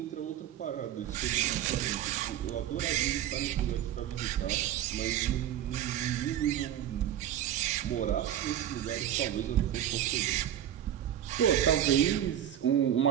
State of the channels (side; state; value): left; quieter; 10.9 dB